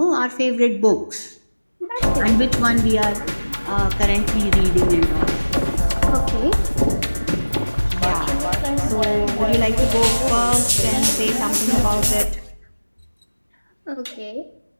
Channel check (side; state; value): both; inverted; correlation -1.00